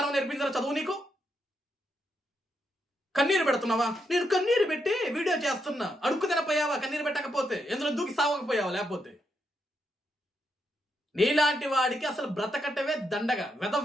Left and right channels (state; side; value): normal; both; correlation 0.81